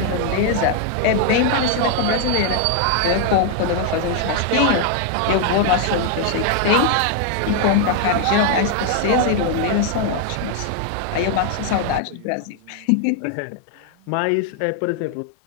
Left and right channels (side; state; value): both; different; correlation 0.00